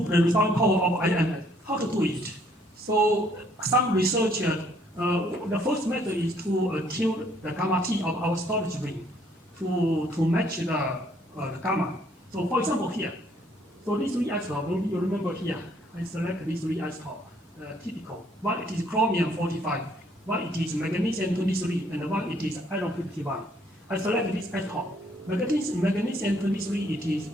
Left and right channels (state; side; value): normal; both; correlation 0.65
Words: the resolving power of IMS. How to do it? So some researchers, the first method is to tune the gamma T of our storage ring to match the gamma. So for example here, so these three isotopes, you remember here, I select these three isotopes, typical. One it is chromium 45, one it is magnesium 23, and one it is iron 51. I select this isotope. Magnesium 23, it is